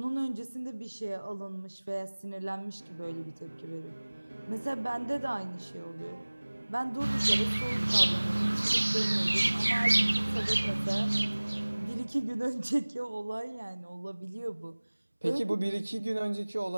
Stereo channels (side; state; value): both; inverted; correlation -1.00